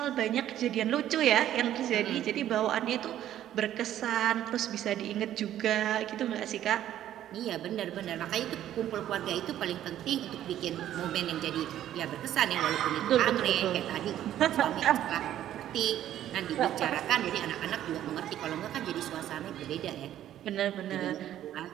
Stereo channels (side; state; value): left; quieter; 11.9 dB